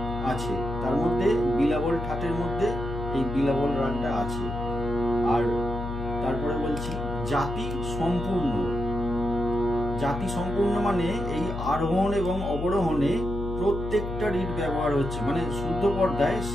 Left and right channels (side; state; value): left; noise; hum, 6 dB below the sound